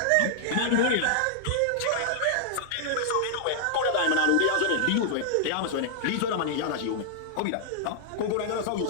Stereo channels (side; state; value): both; different; correlation -0.01